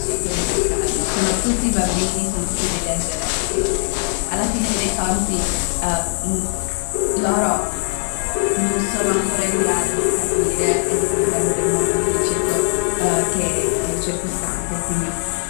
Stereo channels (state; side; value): silent; right; digital silence